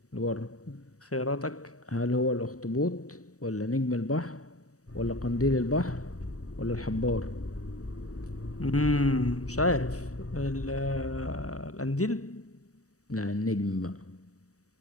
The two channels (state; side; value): late; right; 0.66 ms